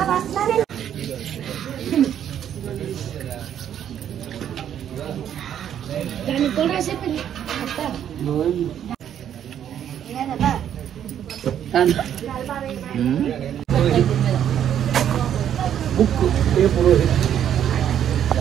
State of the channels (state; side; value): quieter; left; 9.8 dB